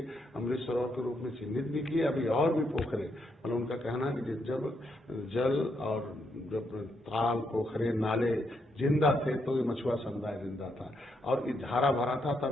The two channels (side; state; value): both; normal; correlation 0.77